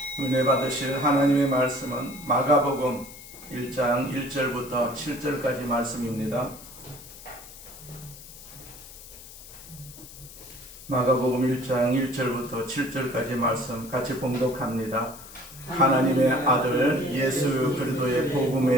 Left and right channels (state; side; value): noise; left; hiss, 17 dB below the sound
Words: 은혜 받으실 하나님의 말씀은 마가복음 1장 1절부터 7절까지 말씀입니다. 마가복음 1장 1절부터 7절까지 말씀 같이 봉독합니다. 하나님의 아들 예수 그리스도의